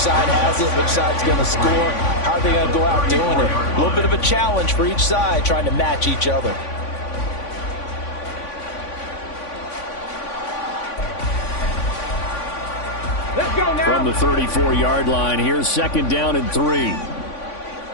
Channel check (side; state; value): right; late; 3.5 ms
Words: has it? Which side's going to score? How are they going to go out doing it? A little bit of a challenge for each side, trying to match each other. Let's go now. From the 34-yard line, here's 2nd down and 3.